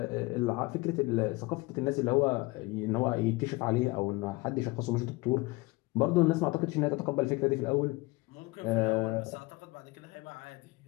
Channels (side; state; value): right; quieter; 23.2 dB